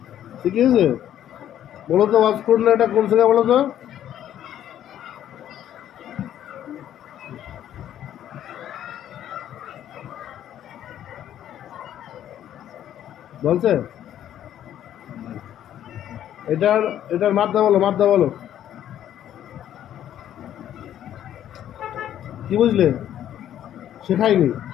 শিখিয়েছে। বলো তো ওয়াজ করলে এটা কোন থেকে বলো তো? বলছে এটার এটার মাদ্দা বলো, মাদ্দা বলো। কি বুঝলে? শেখায়নি,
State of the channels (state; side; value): quieter; right; 11.1 dB